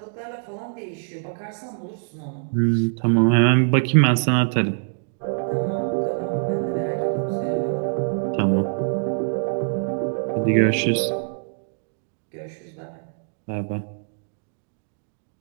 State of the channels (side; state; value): left; silent; digital silence